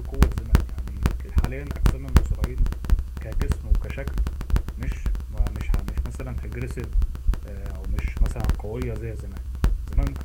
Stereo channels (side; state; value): both; identical; correlation 1.00